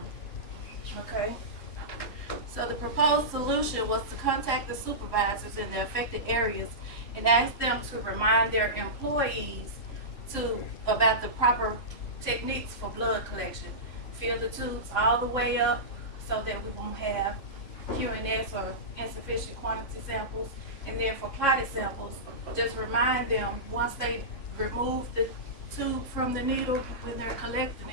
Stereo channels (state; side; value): late; right; 3.6 ms